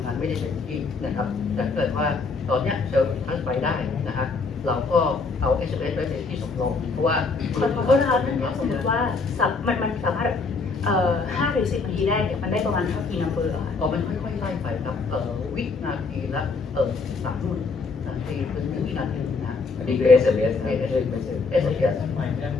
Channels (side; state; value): right; quieter; 4.3 dB